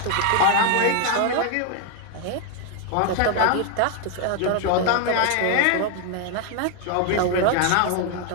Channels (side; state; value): both; different; correlation 0.00